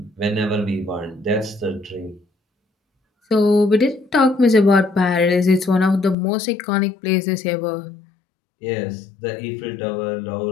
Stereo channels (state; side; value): drops out; right; at 6.2 s